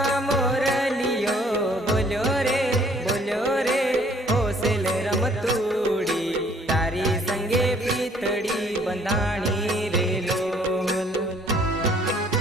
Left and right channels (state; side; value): normal; both; correlation 0.60